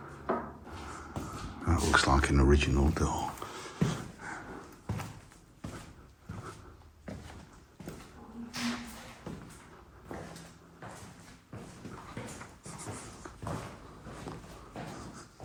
That looks like an original door.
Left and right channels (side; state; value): both; identical; correlation 1.00